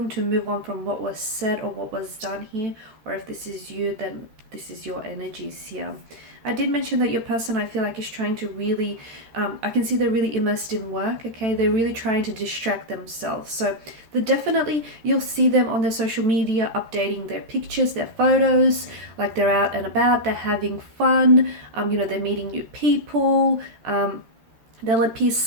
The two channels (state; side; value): late; left; 13 ms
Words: to move on from what was said or what was done here, or if this is you, then this is your energies here. I did mention that your person, I feel like, is trying to really, I can see they're really immersed in work, okay? They're really trying to distract themselves. So definitely, you'll see them on their social media updating their pictures, their photos, like they're out and about, they're having fun, they're meeting new people, they'll appear